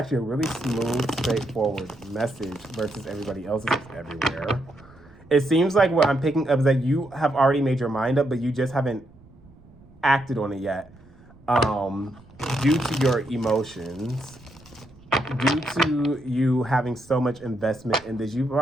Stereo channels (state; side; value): noise; right; rumble, 25 dB below the sound